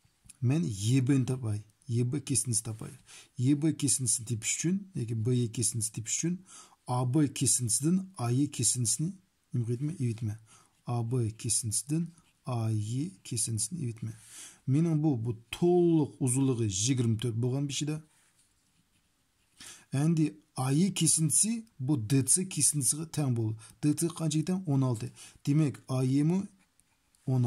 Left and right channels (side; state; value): both; identical; correlation 1.00